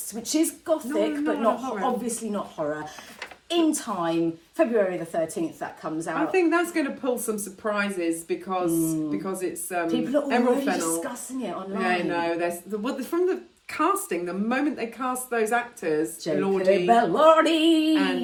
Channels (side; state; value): both; identical; correlation 1.00